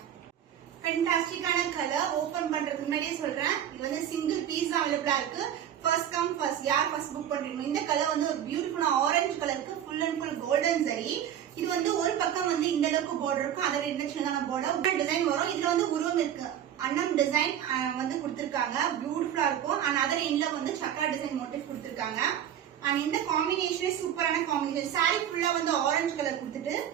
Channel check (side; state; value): left; quieter; 10.2 dB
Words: ஃபேண்டாஸ்டிக்கான கலர். ஓபன் பண்றதுக்கு முன்னாடியே சொல்றேன், இது வந்து சிங்கிள் பீஸ் தான் அவைலபிளா இருக்கு. ஃபர்ஸ்ட் கம் ஃபர்ஸ்ட், யார் ஃபர்ஸ்ட் புக் பண்றீங்க. இந்த கலர் வந்து ஒரு பியூட்டிஃபுல்லான ஆரஞ்சு கலருக்கு ஃபுல் அண்ட் ஃபுல் கோல்டன் சரி. இது வந்து ஒரு பக்கம் வந்து இந்த அளவுக்கு பார்டர் இருக்கும், அதோட இந்த சின்னதான பார்டர் டிசைன் வரும். இதுல வந்து உருவம் இருக்கு, அன்னம் டிசைன் வந்து கொடுத்திருக்காங்க, பியூட்டிஃபுல்லா இருக்கும். அண்ட் அதர் எண்ட்ல வந்து சக்கரா டிசைன் மோட்டிவ் கொடுத்திருக்காங்க. அண்ட் இந்த காம்பினேஷனே சூப்பரான காம்பினேஷன். சாரி ஃபுல்லா வந்து ஆரஞ்சு கலர் கொடுத்துட்டு